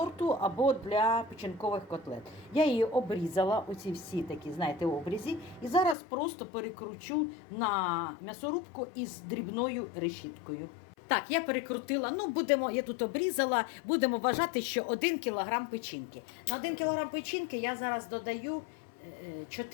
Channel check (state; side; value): drops out; right; at 6.0 s